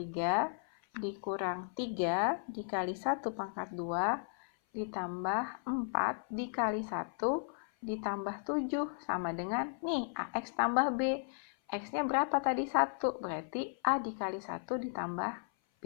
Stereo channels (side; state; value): right; silent; 54 dB below the other